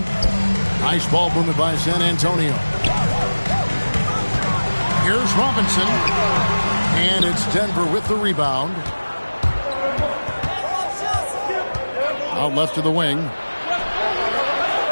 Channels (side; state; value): both; inverted; correlation -1.00